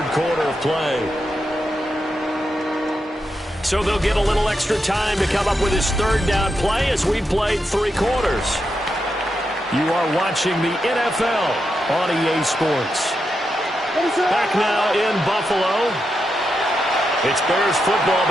quarter of play. So they'll get a little extra time to come up with his third down play as we played 3 quarters. You are watching the NFL on EA Sports. Back now in Buffalo. It's Bears football,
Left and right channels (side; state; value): both; normal; correlation 0.85